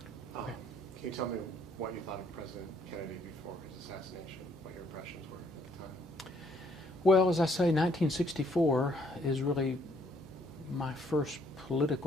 Okay. Can you tell me what you thought of President Kennedy before his assassination, what your impressions were at the time? Well, as I say, 1964 is really my first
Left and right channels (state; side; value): normal; both; correlation 0.67